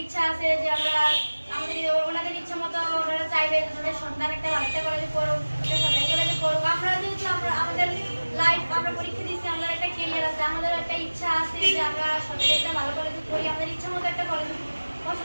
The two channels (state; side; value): inverted; both; correlation -1.00